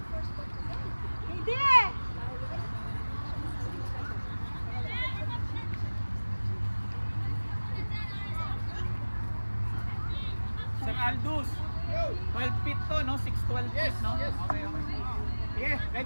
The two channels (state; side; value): inverted; both; correlation -1.00